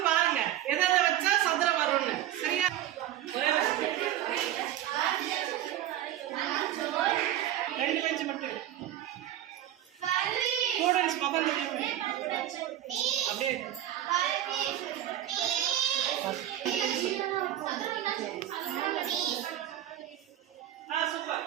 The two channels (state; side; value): quieter; left; 12.5 dB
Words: பாருங்க. எதை வச்சா சதுரம் வரும்னு. சரியா? ஒரே ரெண்டு பெஞ்ச் மட்டும் ஸ்டூடெண்ட்ஸ் பக்கம் அப்படியே சூப்பர்.